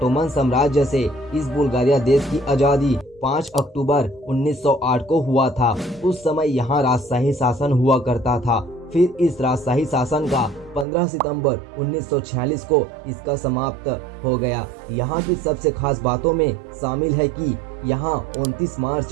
साम्राज्य से इस बुल्गारिया देश की आजादी 5 अक्टूबर 1908 को हुआ था। उस समय यहाँ राजशाही शासन हुआ करता था। फिर इस राजशाही शासन का 15 सितंबर 1946 को इसका समाप्त हो गया। यहाँ की सबसे खास बातों में शामिल है कि यहाँ 29 मार्च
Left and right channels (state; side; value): drops out; left; at 10.9 s